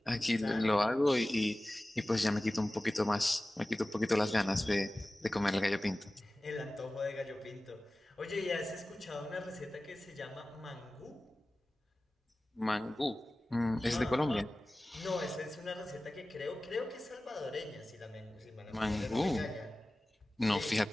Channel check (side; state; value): both; normal; correlation 0.97